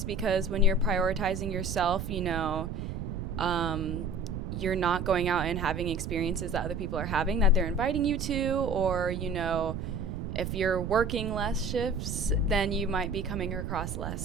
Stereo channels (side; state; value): right; noise; rumble, 5 dB below the sound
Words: because when you're prioritizing yourself, you know, you're not going out and having experiences that other people are having that they're inviting you to, or, you know, if you're working less shifts, then you might be coming across